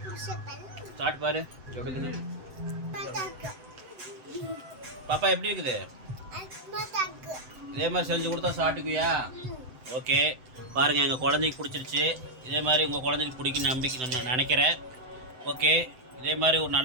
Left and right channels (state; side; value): late; left; 7.8 ms